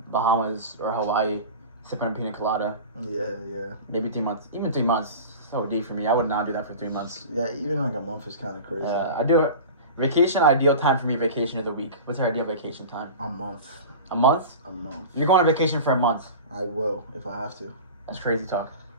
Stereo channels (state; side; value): inverted; both; correlation -0.33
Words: Bahamas or Hawaii, sipping a pina colada. Yeah. Maybe 3 months. Even 3 months. So deep for me. I would not do that for 3 months. Yeah, even like a month is kind of crazy. I do. Vacation, ideal time for me, vacation is a week. What's your ideal vacation time? A month. A month? A month. You're going on vacation for a month. I will, if I have to. That's crazy talk.